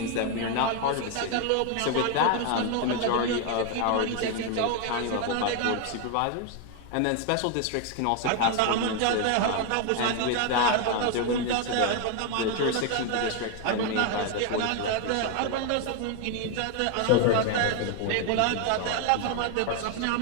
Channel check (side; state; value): both; different; correlation 0.01